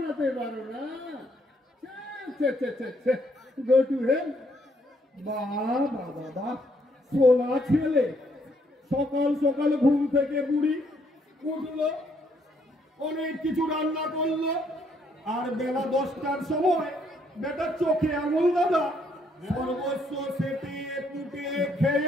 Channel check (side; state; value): both; normal; correlation 0.70